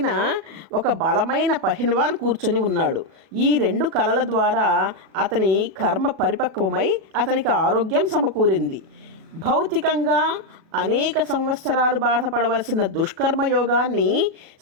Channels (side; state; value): left; late; 37 ms